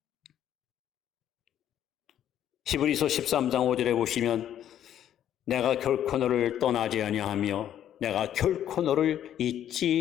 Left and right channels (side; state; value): right; quieter; 10.7 dB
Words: 히브리서 13장 5절에 보시면 내가 결코 너를 떠나지 아니하며 내가 결코 너를